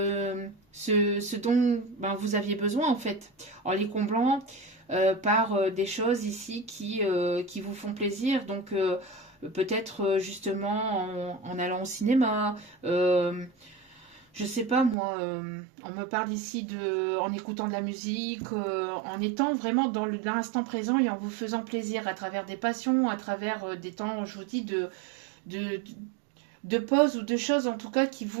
ce dont ben, vous aviez besoin en fait, en les comblant par des choses ici qui vous font plaisir. Donc peut-être justement en allant au cinéma, je sais pas moi, on me parle ici en écoutant de la musique, en étant vraiment dans l'instant présent et en vous faisant plaisir à travers des passions, à travers des temps, je vous dis, de, de pause ou de choses en tout cas qui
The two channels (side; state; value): left; drops out; at 15.0 s